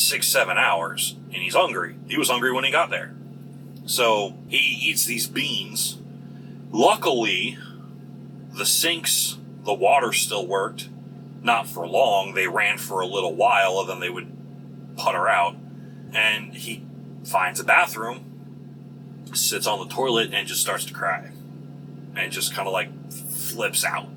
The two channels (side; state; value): both; identical; correlation 1.00